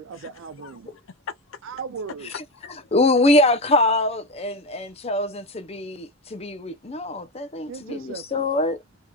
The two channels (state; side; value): normal; both; correlation 0.16